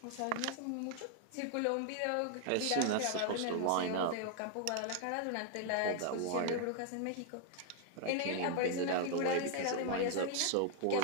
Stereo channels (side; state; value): both; different; correlation 0.00